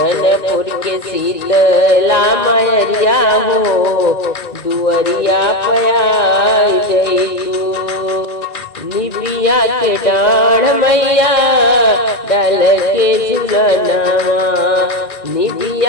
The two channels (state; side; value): late; right; 1.9 ms